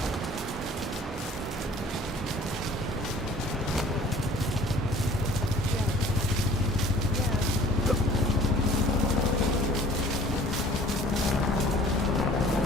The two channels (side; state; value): both; normal; correlation 0.51